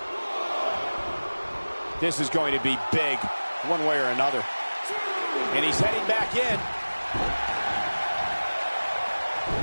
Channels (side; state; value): both; inverted; correlation -1.00